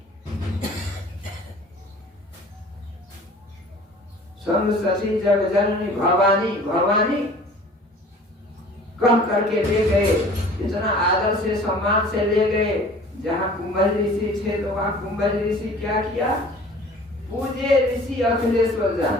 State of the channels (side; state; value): both; normal; correlation 0.47